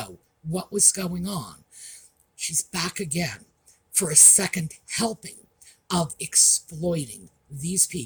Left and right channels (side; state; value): both; identical; correlation 1.00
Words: what was going on. She's back again for a second helping of exploiting these